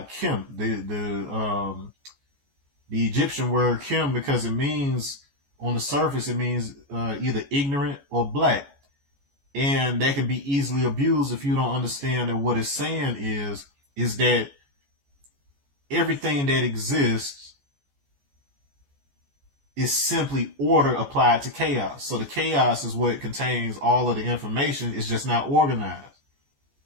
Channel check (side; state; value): left; late; 14 ms